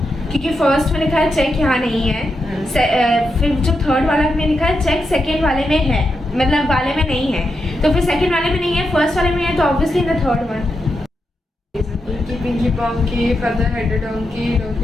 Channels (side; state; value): both; normal; correlation 0.86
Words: क्योंकि फर्स्ट में लिखा है चेक यहाँ नहीं है, फिर जो थर्ड वाला में लिखा है चेक सेकंड वाले में है, मतलब वाले में नहीं है, तो फिर सेकंड वाले में नहीं है, फर्स्ट वाले में है, तो obviously the third one. Inky pinky ponky father had donkey